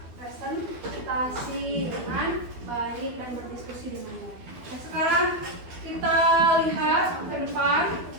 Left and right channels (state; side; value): late; left; 12 ms